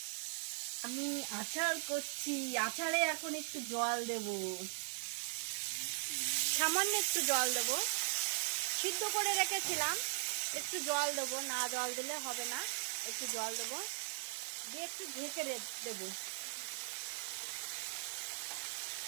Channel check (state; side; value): silent; left; digital silence